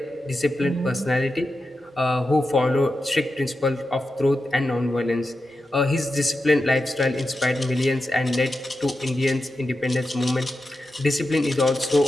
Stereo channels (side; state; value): both; normal; correlation 0.90